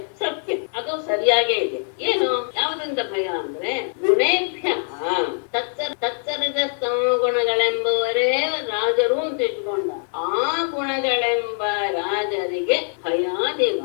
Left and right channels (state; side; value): silent; right; 60 dB below the other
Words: ಸತ್ಯ, ಅದು ಸರಿಯಾಗೇ ಇದೆ. ಏನು ಯಾವುದರಿಂದ ಭಯ ಅಂದ್ರೆ ಗುಣೇಭ್ಯ ತತ್ಸರಿದ ಗುಣಗಳೆಂಬುವರೇ ರಾಜರು ಅಂತ ಇಟ್ಕೊಂಡ ಆ ಗುಣಗಳೆಂಬ ರಾಜರಿಗೆ ಭಯಾದಿವ